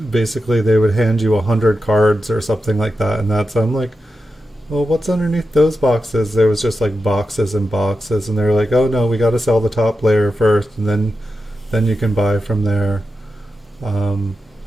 basically they would hand you 100 cards or something like that, and I'm like, well, what's underneath those boxes? There was just like boxes and boxes, and they were like, oh no, we got to sell the top layer first, and then you can buy from there. Um,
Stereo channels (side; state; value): both; normal; correlation 0.90